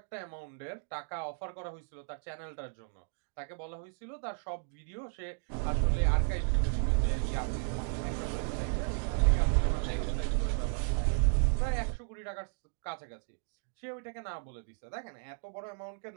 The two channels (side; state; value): left; silent; 55 dB below the other